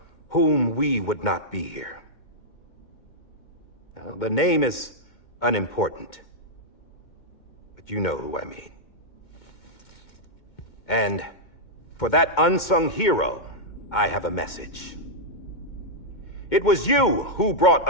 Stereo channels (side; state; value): right; late; 2.2 ms